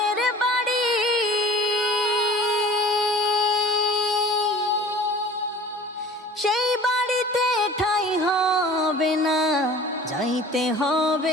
বাড়ি। সেই বাড়িতে ঠাঁই হবে না, যাইতে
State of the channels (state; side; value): normal; both; correlation 0.44